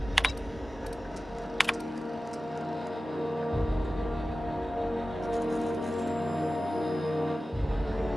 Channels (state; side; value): normal; both; correlation 0.95